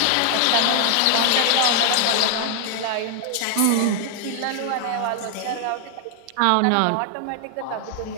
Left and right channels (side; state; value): both; different; correlation 0.00